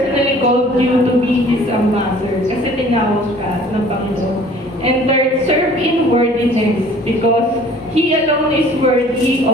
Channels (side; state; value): both; normal; correlation 0.51